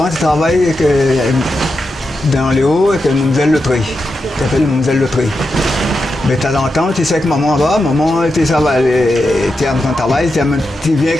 tu travailles dans les hauts avec le mademoiselle Loterie. Tu appelles le mademoiselle Loterie. Mais de temps en temps, tu sais que maman va, maman, tu es en train de travailler, tu viens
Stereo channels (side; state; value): both; normal; correlation 0.88